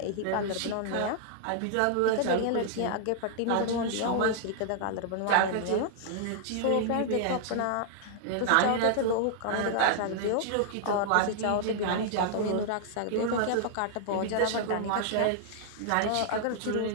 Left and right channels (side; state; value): both; different; correlation -0.01